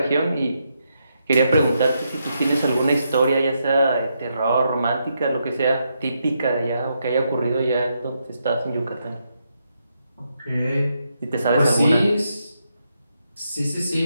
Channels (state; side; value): inverted; both; correlation -0.81